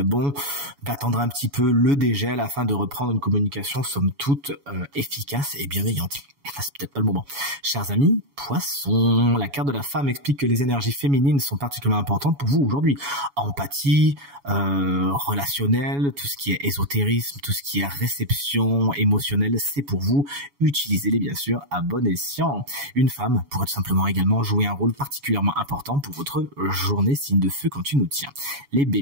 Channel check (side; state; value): left; late; 7.1 ms